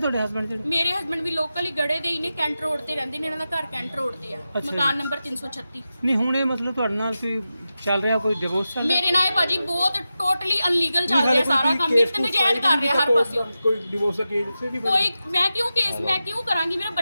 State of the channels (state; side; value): inverted; both; correlation -0.92